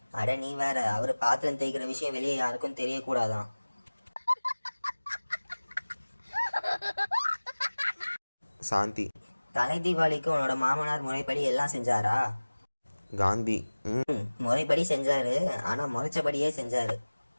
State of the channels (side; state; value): both; inverted; correlation -1.00